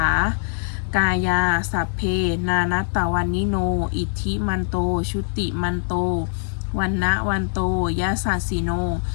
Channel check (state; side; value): silent; right; 64 dB below the other